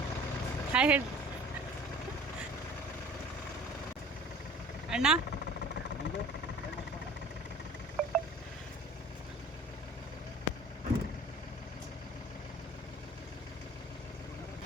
ಹಾಯ್ ಹೇಳಿ ಅಣ್ಣ.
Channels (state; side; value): normal; both; correlation 0.46